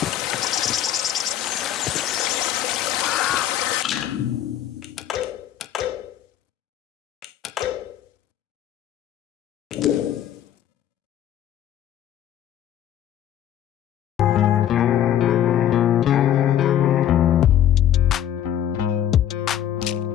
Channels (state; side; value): quieter; right; 10.9 dB